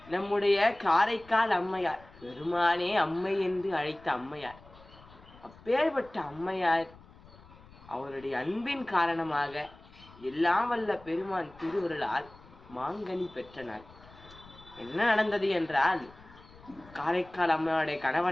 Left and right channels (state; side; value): noise; left; rumble, 23 dB below the sound